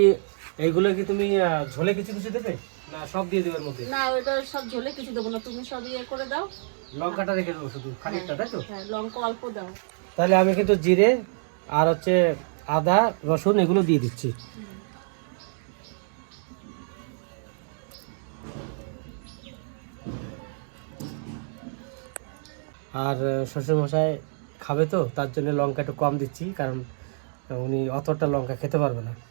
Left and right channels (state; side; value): silent; left; digital silence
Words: কি তুমি ঝোলে কিছু কিছু দেবে না সব দিয়ে দেবে এর মধ্যে? না, ওইটা সব ঝোলে কিছু দেবো না, তুমি সব ইয়ে করে দাও। লঙ্কাটা রেখে দেবো শুধু খানিকটা, তাই তো? হ্যাঁ, লঙ্কা অল্প দাও। তাহলে আমি কিন্তু জিরে আর হচ্ছে আদা রসুন এগুলো দিয়ে দিচ্ছি। আর শ্বশুরমশাই খাবে তো, তার জন্য লঙ্কা একটু কম দিচ্ছি, কারণ উনি অতটা লঙ্কা খেতে পারবে না,